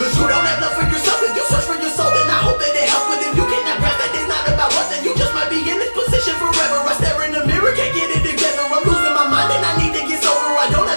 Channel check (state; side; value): inverted; both; correlation -1.00